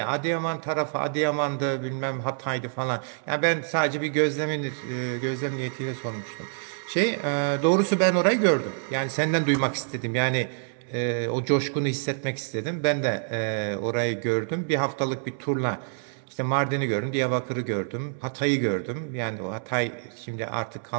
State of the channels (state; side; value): silent; left; 60 dB below the other